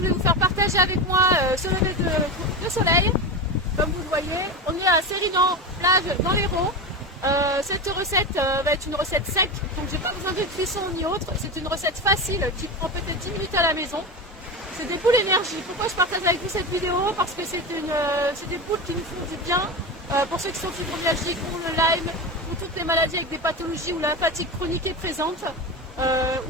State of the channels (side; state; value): both; normal; correlation 0.21